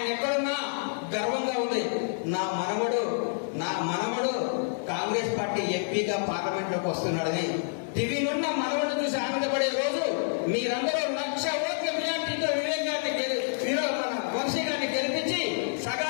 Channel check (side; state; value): right; silent; digital silence